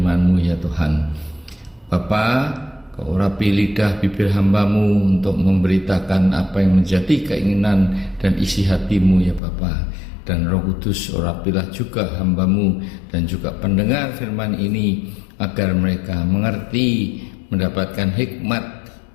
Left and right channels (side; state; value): right; drops out; at 9.4 s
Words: ya Tuhan. Bapa, Kau urapi lidah bibir hamba-Mu untuk memberitakan apa yang menjadi keinginan dan isi hati-Mu ya Bapa. Dan Roh Kudus urapilah juga hamba-Mu dan juga pendengar firman ini, agar mereka mengerti, mendapatkan hikmat